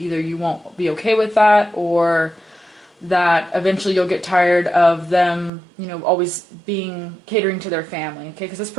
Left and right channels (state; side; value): drops out; left; at 5.5 s